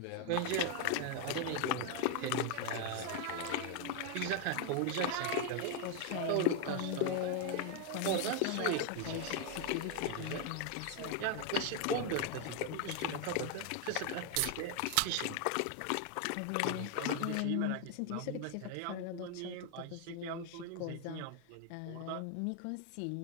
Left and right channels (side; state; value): both; different; correlation 0.01